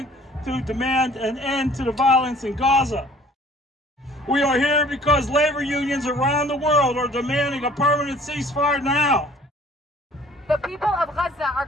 to demand an end to the violence in Gaza. We are here because labor unions around the world are demanding a permanent ceasefire now. The people of Gaza are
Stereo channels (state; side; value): normal; both; correlation 0.53